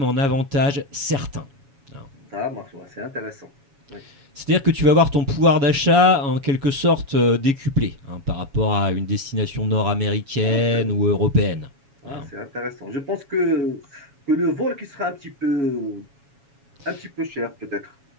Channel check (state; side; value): late; left; 7.2 ms